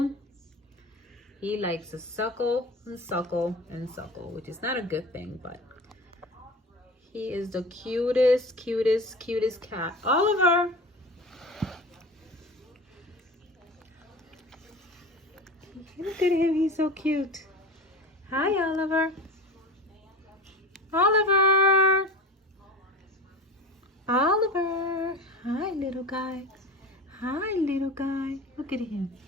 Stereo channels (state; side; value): normal; both; correlation 0.33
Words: He likes to suckle and suckle and suckle, which is not a good thing, but he is the cutest, cutest, cutest cat. Oliver! Look at him, he's so cute. Hi, Oliver. Oliver! Oliver! Hi, little guy. Hi, little guy. Look at him.